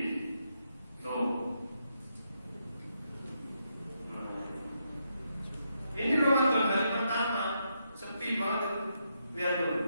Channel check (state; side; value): inverted; both; correlation -0.80